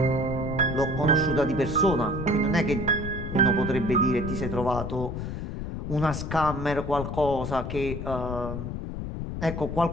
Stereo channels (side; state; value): left; noise; rumble, 5 dB below the sound